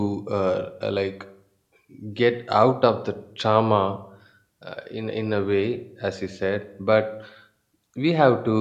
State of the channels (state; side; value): identical; both; correlation 1.00